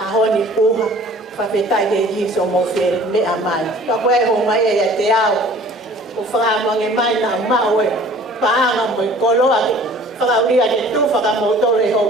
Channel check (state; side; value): normal; both; correlation 0.49